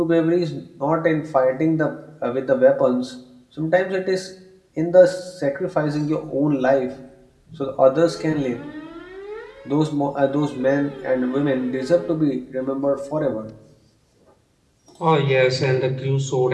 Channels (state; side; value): identical; both; correlation 1.00